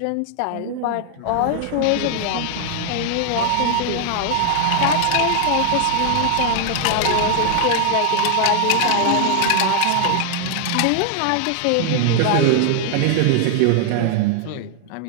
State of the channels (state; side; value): different; both; correlation 0.00